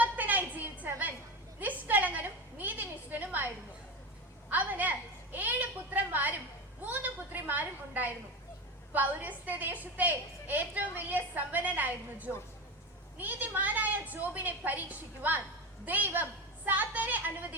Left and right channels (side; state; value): both; normal; correlation 0.22